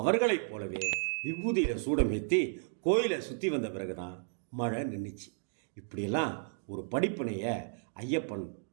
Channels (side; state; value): left; silent; digital silence